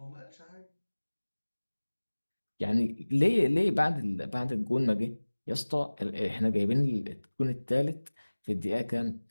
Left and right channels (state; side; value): inverted; both; correlation -1.00